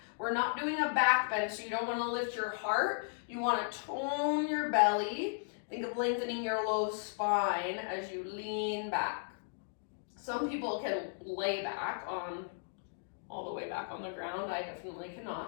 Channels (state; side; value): silent; right; digital silence